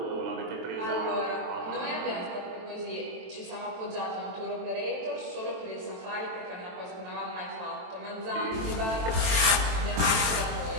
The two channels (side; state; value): left; late; 23 ms